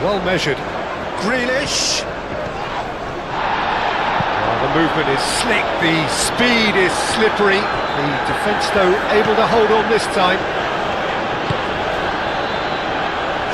well measured. Grealish. The movement is slick, the speed is slippery. The defence, though, able to hold on this time.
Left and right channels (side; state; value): both; identical; correlation 1.00